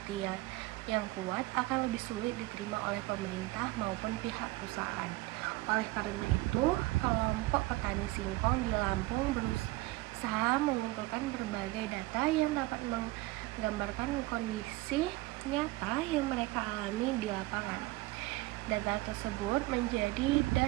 yang kuat akan lebih sulit diterima oleh pemerintah maupun pihak perusahaan. Oleh karena itu, kelompok petani singkong di Lampung berusaha mengumpulkan berbagai data yang dapat menggambarkan kondisi nyata yang mereka alami di lapangan. Data tersebut menjadi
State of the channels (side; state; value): left; quieter; 20.1 dB